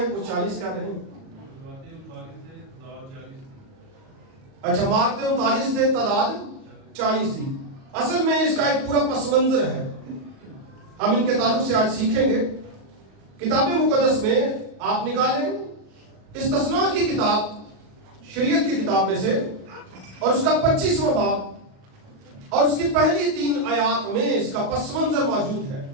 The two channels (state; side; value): late; left; 37 ms